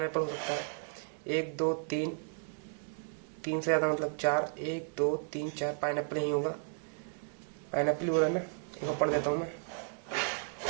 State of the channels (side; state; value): left; silent; 55 dB below the other